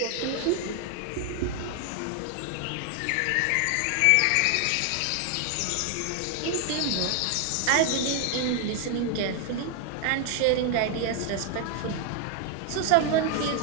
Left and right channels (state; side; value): different; both; correlation 0.00